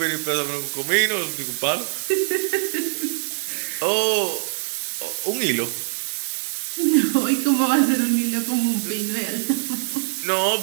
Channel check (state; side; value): silent; left; digital silence